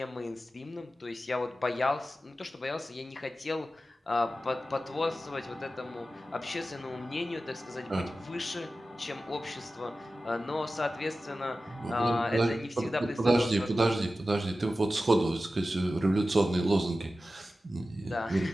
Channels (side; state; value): both; normal; correlation 0.94